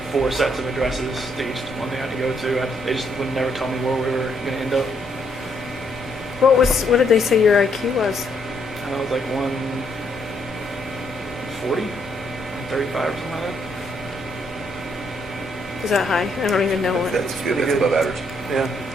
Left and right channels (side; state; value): both; normal; correlation 0.73